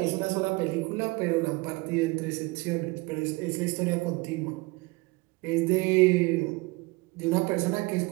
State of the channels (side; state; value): left; quieter; 24.7 dB